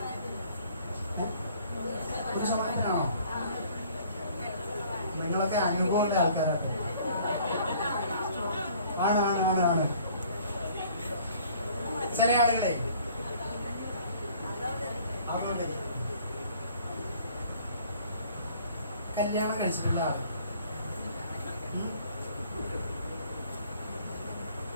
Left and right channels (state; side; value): inverted; both; correlation -0.56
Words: 1%-നാണോ? നിങ്ങളൊക്കെ അനുഭവമുള്ള ആൾക്കാരാണ്. ആണ് ആണ് ആണ് ആണ് ചില ആളുകളെ കല്യാണം കഴിച്ചിട്ടുള്ള ആള്